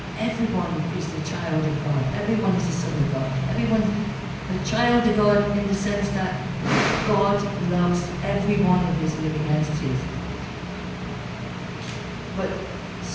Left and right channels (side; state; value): both; identical; correlation 1.00